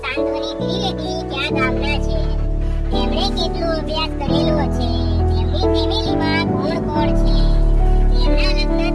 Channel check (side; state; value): both; identical; correlation 1.00